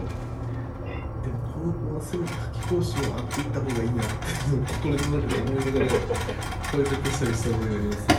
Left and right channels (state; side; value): identical; both; correlation 1.00